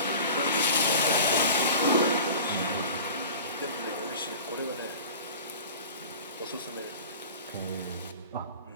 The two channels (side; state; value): both; inverted; correlation -0.38